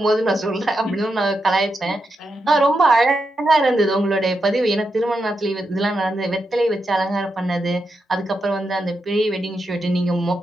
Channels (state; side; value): normal; both; correlation 0.85